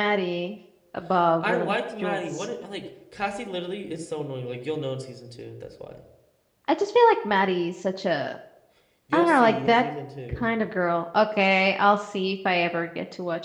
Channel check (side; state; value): both; identical; correlation 1.00